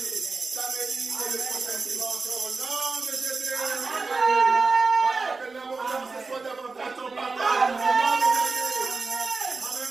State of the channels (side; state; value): left; quieter; 4.1 dB